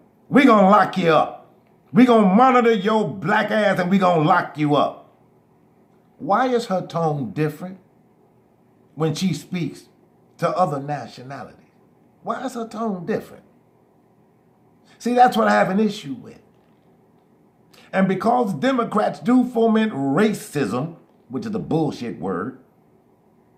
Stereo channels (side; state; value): both; identical; correlation 1.00